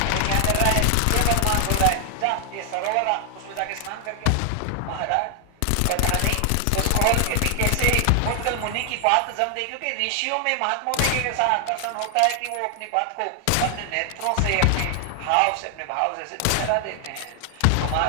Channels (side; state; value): both; different; correlation 0.00